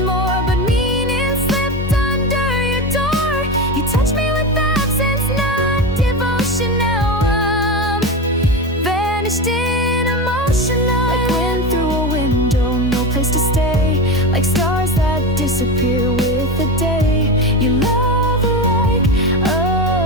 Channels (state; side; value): normal; both; correlation 0.21